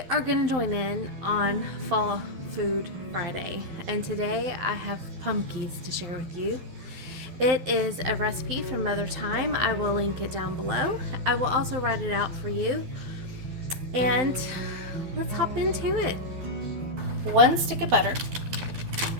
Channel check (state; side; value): late; left; 12 ms